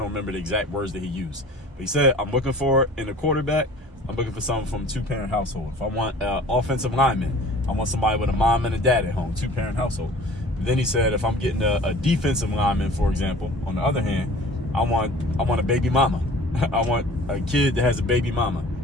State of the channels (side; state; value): both; normal; correlation 0.45